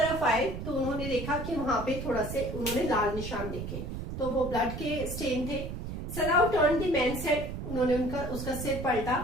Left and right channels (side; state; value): right; noise; rumble, 6 dB below the sound